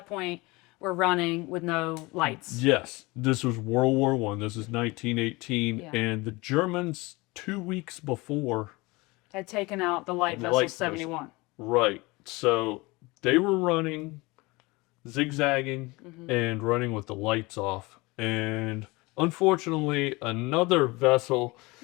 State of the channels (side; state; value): right; quieter; 23.6 dB